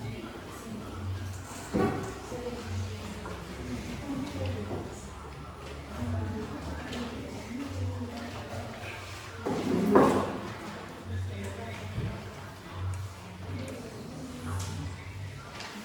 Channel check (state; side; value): identical; both; correlation 1.00